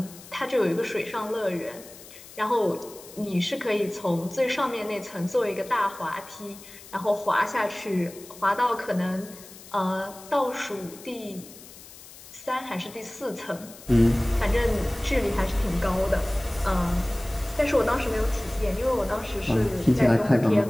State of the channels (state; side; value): noise; left; hiss, 18 dB below the sound